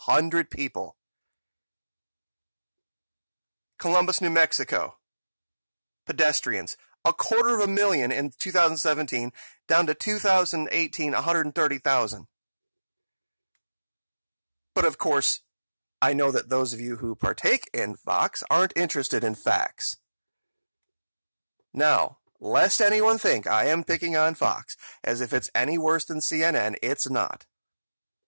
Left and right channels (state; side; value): inverted; both; correlation -1.00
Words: people. Columbus, New Mexico. Pedestrians. 250,000 in 2017, down to 2018, 130,000. But of course, I know that those of you who partake in Fox aren't interested in facts. Now, lest anyone think I am picking on Fox, as if it's any worse than CNN, it's not.